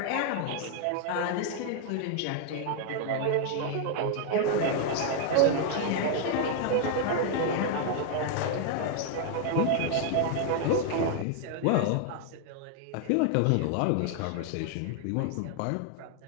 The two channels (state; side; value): different; both; correlation 0.00